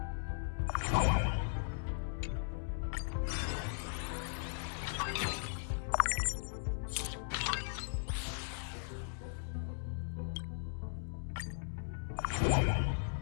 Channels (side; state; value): right; silent; digital silence